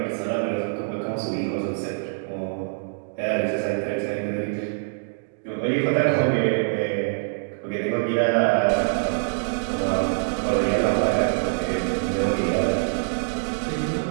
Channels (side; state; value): left; silent; digital silence